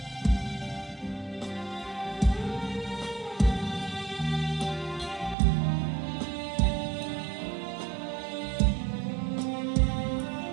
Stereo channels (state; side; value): drops out; left; at 5.4 s